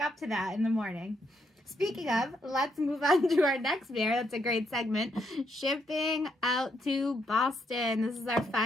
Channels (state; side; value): normal; both; correlation 0.76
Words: to that in the morning? Speaking of, let's move on to our next beer. That's a great segment. Shipping out to Boston. This is our